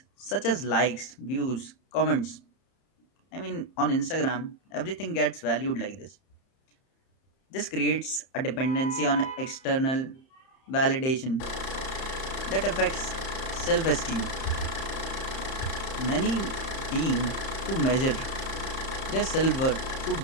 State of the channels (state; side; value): late; right; 30 ms